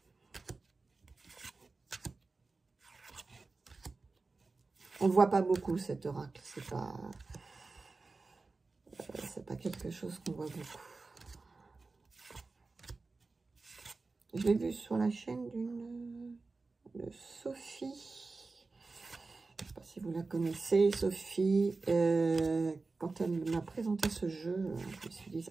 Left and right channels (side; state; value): left; quieter; 3.8 dB